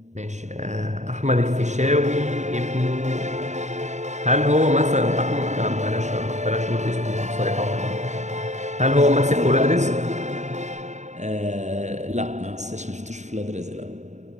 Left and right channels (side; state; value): left; late; 0.34 ms